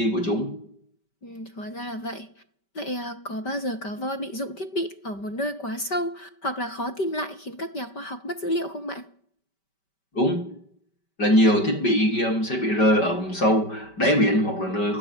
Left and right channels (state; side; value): late; right; 5.2 ms